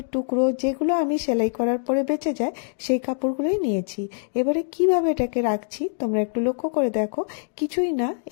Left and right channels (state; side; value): silent; right; digital silence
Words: টুকরো যেগুলো আমি সেলাই করার পরে বেঁচে যায় সেই কাপড়গুলোই নিয়েছি। এবারে কিভাবে এটাকে রাখছি তোমরা একটু লক্ষ্য করে দেখো। কিছুই না,